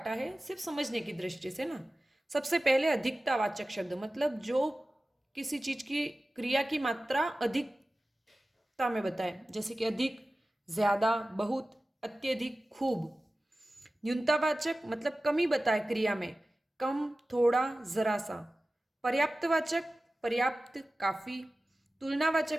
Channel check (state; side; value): normal; both; correlation 0.96